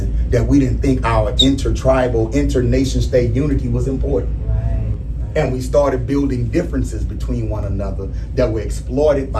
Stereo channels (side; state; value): both; identical; correlation 1.00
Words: that we didn't think our intertribal, inter-nation state unity was important. And we started building differences between one another that were exploited